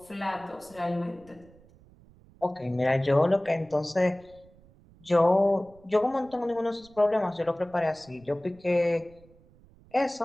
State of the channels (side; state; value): right; noise; rumble, 26 dB below the sound